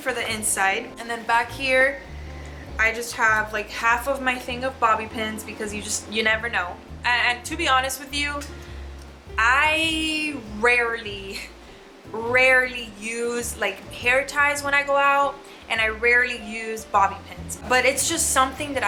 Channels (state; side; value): identical; both; correlation 1.00